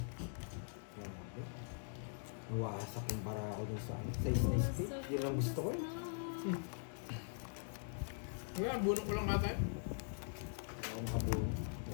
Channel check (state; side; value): silent; right; digital silence